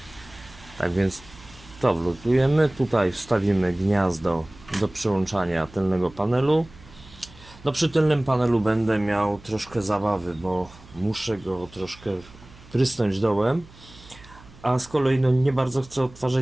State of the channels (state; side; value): noise; right; hum, 22 dB below the sound